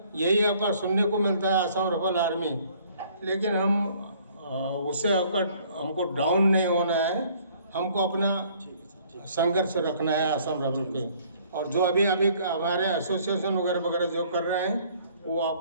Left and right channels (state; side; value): inverted; both; correlation -0.59